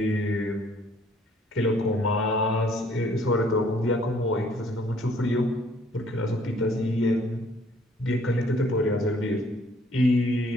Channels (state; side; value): normal; both; correlation 0.61